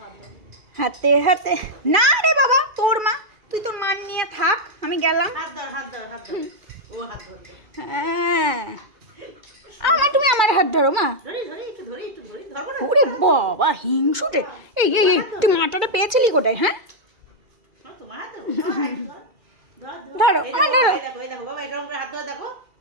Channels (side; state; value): left; late; 2.4 ms